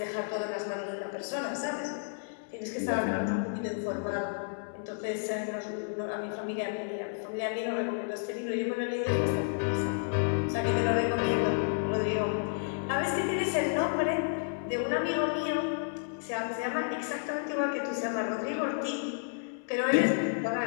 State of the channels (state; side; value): silent; right; digital silence